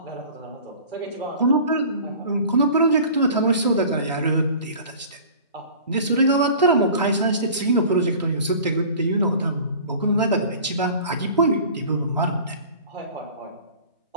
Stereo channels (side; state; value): both; inverted; correlation -0.43